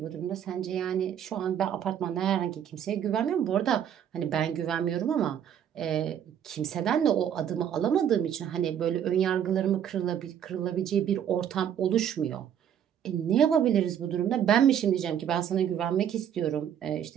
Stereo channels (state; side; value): quieter; left; 9.3 dB